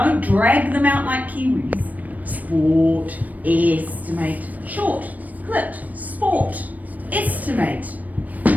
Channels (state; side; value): late; left; 0.077 ms